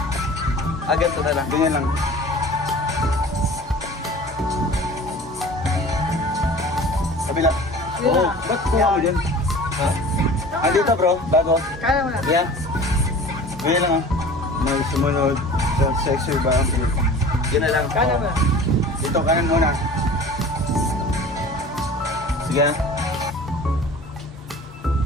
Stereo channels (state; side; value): normal; both; correlation 0.42